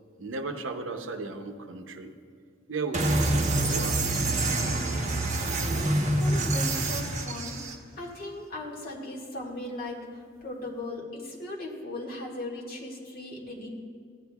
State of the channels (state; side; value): normal; both; correlation 0.59